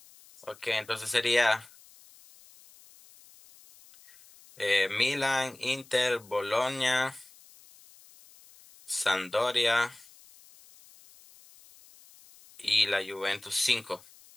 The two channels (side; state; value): left; noise; hiss, 24 dB below the sound